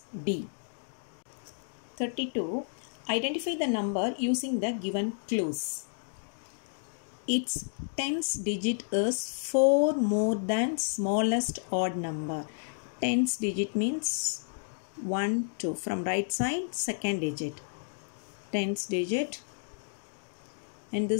D. 32. Identify the number using the given clues. Its tens digit is 4 more than smallest odd number. Tens digit means 1, 2. From right side, second digit. Tens digit. And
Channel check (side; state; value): right; silent; digital silence